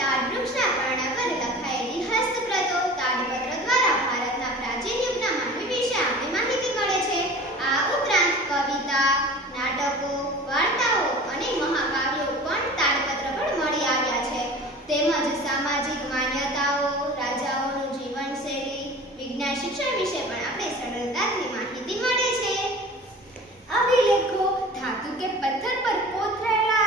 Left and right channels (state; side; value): normal; both; correlation 0.40